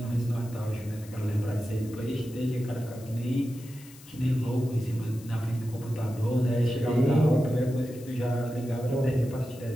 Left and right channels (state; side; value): noise; left; hiss, 21 dB below the sound